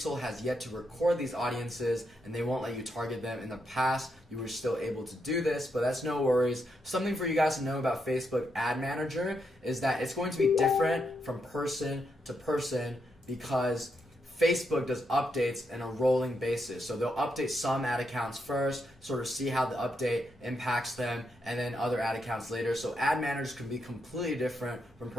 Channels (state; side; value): normal; both; correlation 0.81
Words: has yet to record these audiences and they won't let you target them. In the past, you were still able to do this, but that's no worries. Something for you guys to know about Facebook Ad Manager is that it's going to be different from person to person because Facebook does updates on a rolling basis. So they'll update some ad accounts first, sort of see how the update impacts them, and then other ad accounts later. So ad managers can be completely different from